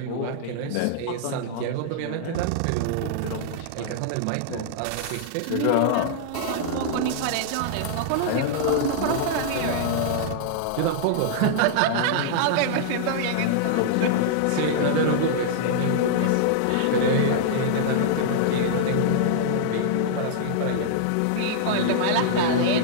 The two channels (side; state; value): both; different; correlation -0.01